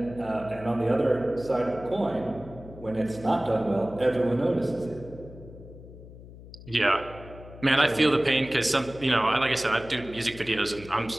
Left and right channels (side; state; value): left; noise; hum, 17 dB below the sound